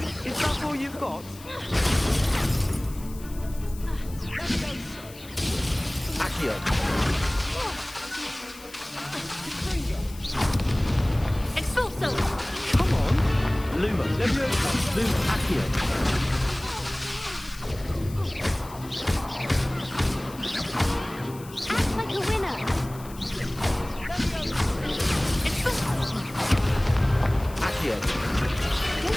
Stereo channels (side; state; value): left; noise; hiss, 19 dB below the sound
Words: Is that all you've got? Accio. Expulso! Come on. Lumos. Levioso. Lumos. Accio. Act like a winner! Accio.